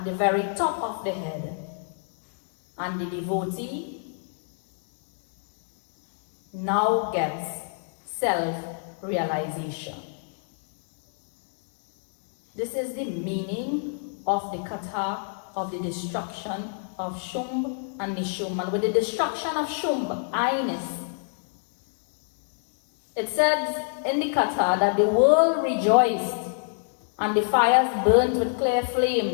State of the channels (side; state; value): right; silent; digital silence